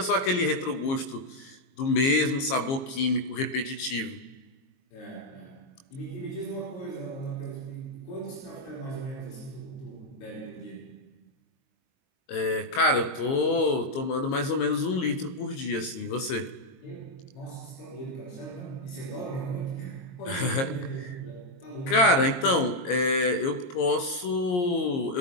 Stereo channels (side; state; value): right; late; 22 ms